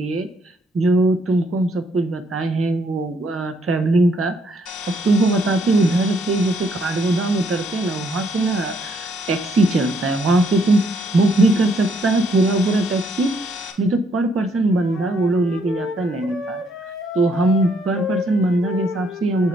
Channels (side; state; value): both; normal; correlation 0.70